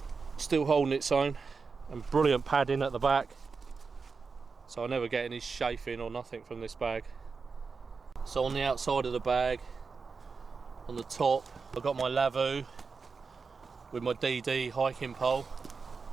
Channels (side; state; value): left; quieter; 4.9 dB